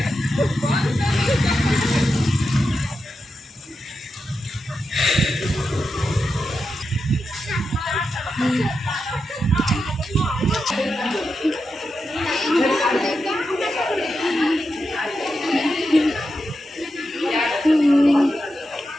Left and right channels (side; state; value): both; normal; correlation 0.88